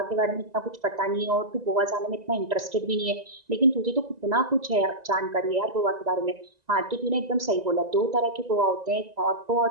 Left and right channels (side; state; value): left; late; 1.9 ms